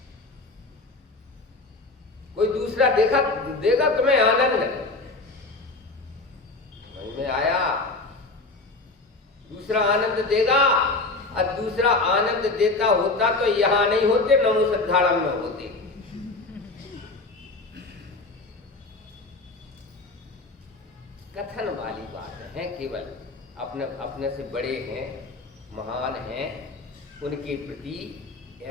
कोई दूसरा देगा तुम्हें आनंद? समझ में आया? दूसरा आनंद देगा, और दूसरा आनंद देता होता तो यहां नहीं होते, नमो सिद्धारम में होते। कथन वाली बात है, केवल अपने से बड़े हैं, महान हैं, उनके प्रति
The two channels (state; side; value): quieter; right; 3.4 dB